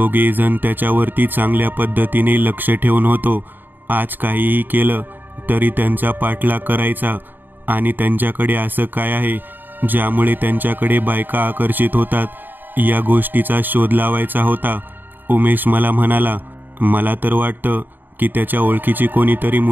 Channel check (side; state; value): left; late; 0.092 ms